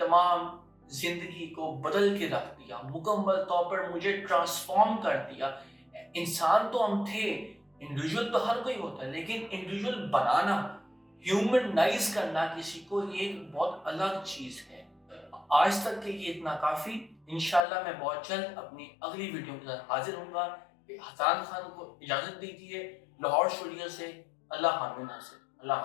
زندگی کو بدل کے رکھ دیا, مکمل طور پر مجھے ٹرانسفارم کر دیا. انسان تو ہم تھے, انڈیویجول تو ہر کوئی ہوتا ہے, لیکن انڈیویجول بنانا, ہیومنائز کرنا کسی کو, یہ ایک بہت الگ چیز ہے. آج تک کے لیے اتنا کافی. انشاءاللہ میں بہت جلد اپنی اگلی ویڈیو کے ساتھ حاضر ہوں گا. حسان خان کو اجازت دیجیے لاہور اسٹوڈیو سے. اللہ حافظ. اللہ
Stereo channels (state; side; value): drops out; right; at 17.6 s